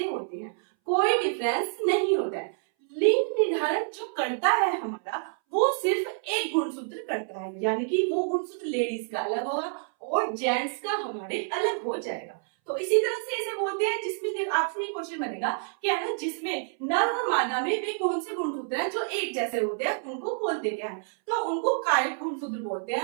होते हैं, कोई डिफरेंस नहीं होता है। लिंग निर्धारण जो करता है हमारा वो सिर्फ एक गुणसूत्र करता है, यानी कि वो गुणसूत्र लेडीज का अलग होगा और जेंट्स का हमारे अलग हो जाएगा। तो इसी तरह से इसे बोलते हैं, जिसमें आपसे एक क्वेश्चन बनेगा कि है ना जिसमें नर और मादा में वे कौन से गुणसूत्र हैं जो एक जैसे होते हैं, उनको बोलते क्या है, तो उनको कायिक गुणसूत्र बोलते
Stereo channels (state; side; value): silent; left; 59 dB below the other